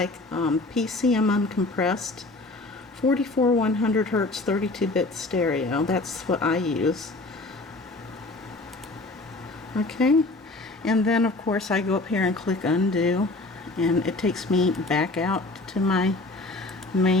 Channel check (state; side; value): quieter; right; 3.0 dB